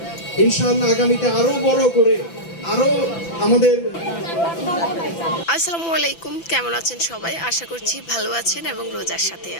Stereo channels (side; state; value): right; late; 5.9 ms